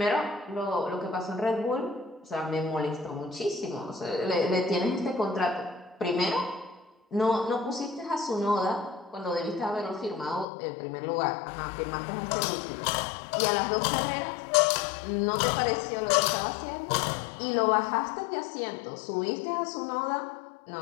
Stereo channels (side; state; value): right; drops out; at 10.5 s